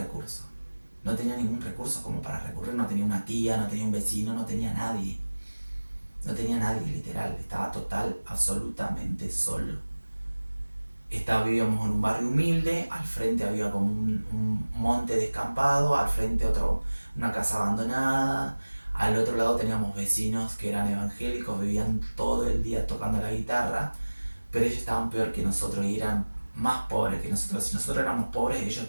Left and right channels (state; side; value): inverted; both; correlation -1.00